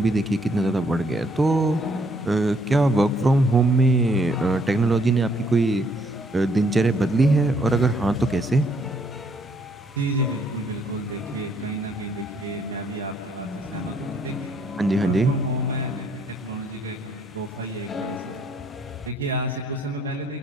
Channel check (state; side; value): normal; both; correlation 0.68